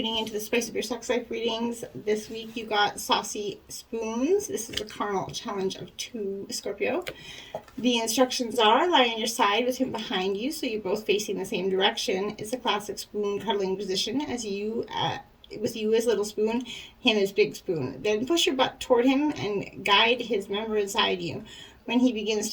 into the Spice of Your Sex Life readings, this week you got Saucy Spoons. This is a carnal challenge of 2, Scorpio. The instructions are lie on your side with him behind you, so you're both facing the same direction. It's a classic spoon cuddling position, as you, with you as little spoon, him as big spoon. Then push your butt toward him and guide his member inside you. When he begins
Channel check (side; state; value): both; identical; correlation 1.00